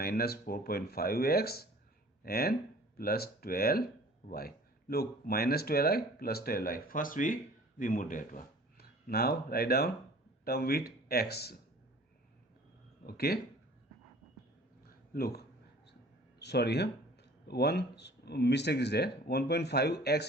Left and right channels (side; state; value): both; normal; correlation 0.48